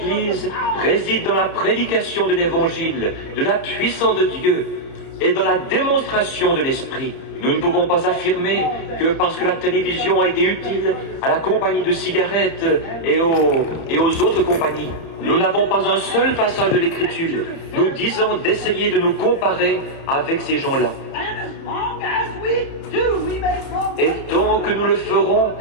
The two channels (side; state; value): right; late; 30 ms